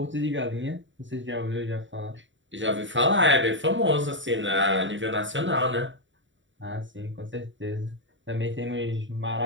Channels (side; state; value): left; late; 0.55 ms